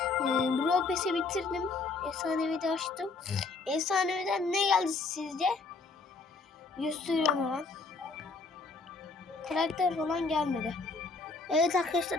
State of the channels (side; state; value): right; quieter; 4.0 dB